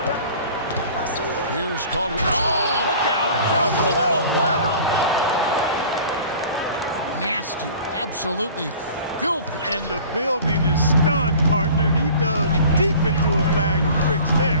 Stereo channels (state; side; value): inverted; both; correlation -0.45